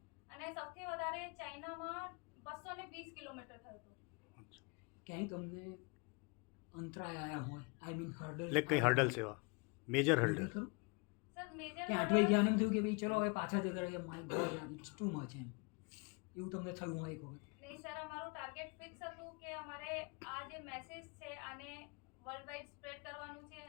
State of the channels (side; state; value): right; quieter; 31.2 dB